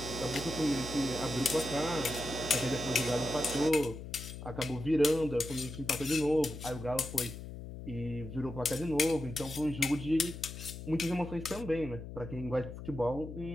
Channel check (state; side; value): noise; left; hum, 10 dB below the sound